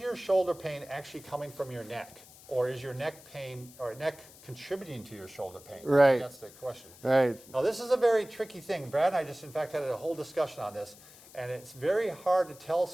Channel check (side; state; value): left; noise; hiss, 21 dB below the sound